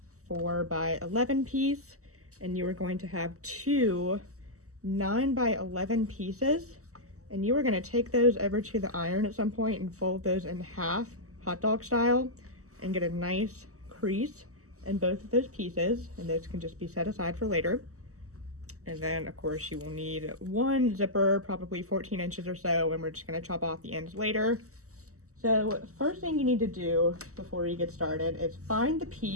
4 by 11 piece, and you are going to have two 9 by 11 pieces, and you are going to take those over to the iron at some point and fold those in half, hot dog style, and get a nice crease in both of those pieces, and those can just be set aside for later. And then of course you will need one zipper, probably 14 inches or so, and we're just going to chop off the ends later. So first thing you need to do before you get started is find the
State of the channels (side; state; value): left; late; 0.65 ms